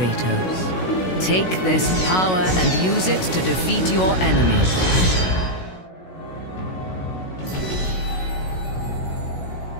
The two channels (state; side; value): late; right; 16 ms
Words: Take this power and use it to defeat your enemies.